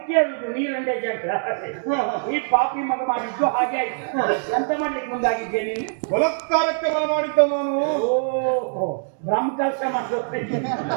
ಕೇಳುದು ನೀರಂಡೆ ಜಗಳ. ಈ ಪಾಪಿ ಮಗ ಮಾಡಿದ್ದು ಹಾಗೆ ಆಯ್ತು. ಎಂತ ಮಾಡ್ಲಿಕ್ಕೆ ಮುಂದಾಗಿದ್ದೆ ನೀನು? ಬಲಾತ್ಕಾರಕ್ಕೆ ಬಲ ಮಾಡಿದ್ದ ನಾನು. ಓಹೋ ಬ್ರಹ್ಮಕಲಶ ಮಾಡ್ತೇನೆ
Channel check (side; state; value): left; silent; 63 dB below the other